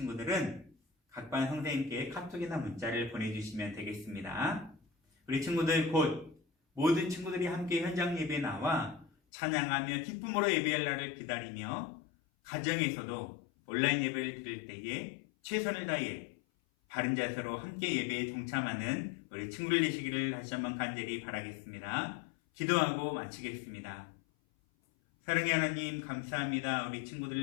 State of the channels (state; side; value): drops out; right; at 9.1 s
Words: 각반 선생님께 카톡이나 문자를 보내주시면 되겠습니다. 우리 친구들 곧 모든 친구들이 함께 현장 예배에 나와 찬양하며 기쁨으로 예배할 날을 기다리며 가정에서도 온라인 예배를 드릴 때에 최선을 다해 바른 자세로 함께 예배에 동참하는 우리 친구들 되시기를 다시 한번 간절히 바라겠습니다. 기도하고 마치겠습니다. 사랑의 하나님 감사합니다. 우리